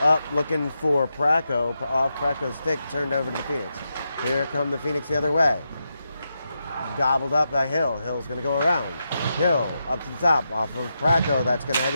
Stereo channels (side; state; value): both; inverted; correlation -0.86